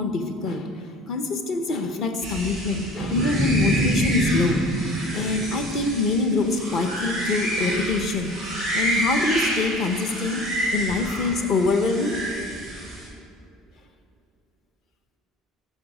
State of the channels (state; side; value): normal; both; correlation 0.42